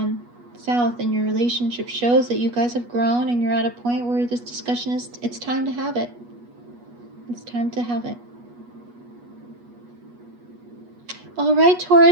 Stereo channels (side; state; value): left; late; 8.3 ms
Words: south in your relationship, shows that you guys have grown and you're at a point where this discussion is, it's time to have it. It's time to have it. All right,